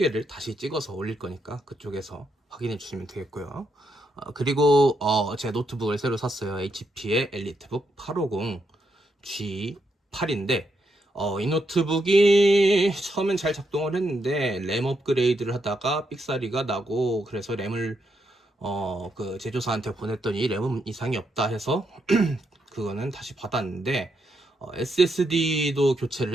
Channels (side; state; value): both; normal; correlation 0.80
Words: 다시 찍어서 올릴 거니까 그쪽에서 확인해 주시면 되겠고요. 그리고 제 노트북을 새로 샀어요. HP의 엘리트북 850 G8인데 이 노트북이 처음엔 잘 작동을 했는데 램 업그레이드를 하다가 삑사리가 나고, 그래서 램을 그 제조사한테 보냈더니 램은 이상이 없다 해서 그거는 다시 받았는데, SSD도